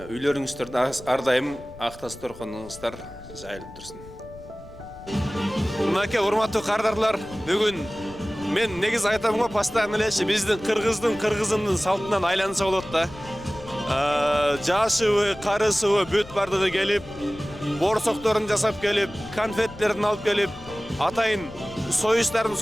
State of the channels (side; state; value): left; noise; rumble, 18 dB below the sound